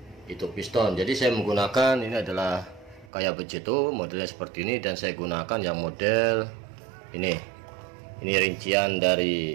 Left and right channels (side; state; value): left; drops out; at 3.1 s